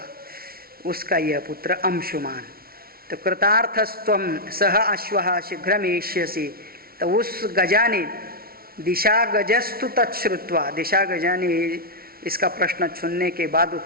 उसका यह पुत्र अंशुमान। तो कृतार्थस्त्वम सह अश्वः शीघ्रमेष्यसि, तो उस गजा ने दिशा गजस्तु तच्छ्रुत्वा, दिशा गजा ने इसका प्रश्न सुनने के बाद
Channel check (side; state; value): left; late; 0.44 ms